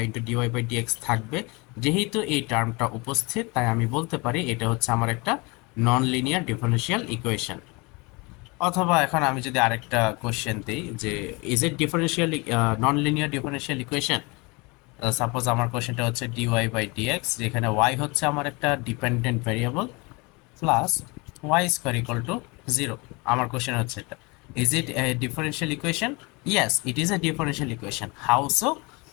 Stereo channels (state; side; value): quieter; right; 27.3 dB